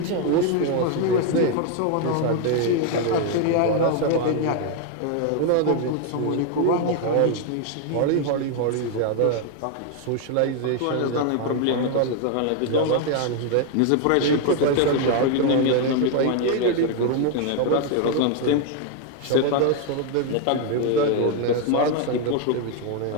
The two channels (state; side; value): different; both; correlation 0.01